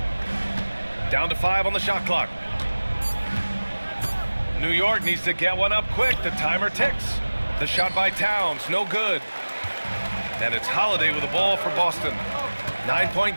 Down to 5 on the shot clock. New York needs to get one up quick. The timer ticks. The shot by Towns, no good. And it's Holiday with the ball for Boston. 9-point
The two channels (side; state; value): both; inverted; correlation -1.00